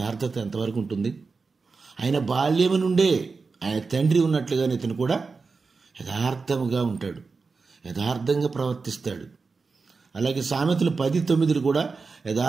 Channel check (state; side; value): quieter; left; 4.5 dB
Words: ఎంతవరకు ఉంటుంది? ఆయన బాల్యము నుండే ఆయన తండ్రి ఉన్నట్లుగానే ఇతను కూడా యథార్థముగా ఉంటాడు, యథార్థంగా ప్రవర్తిస్తాడు. అలాగే సామెతలు 10:9 కూడా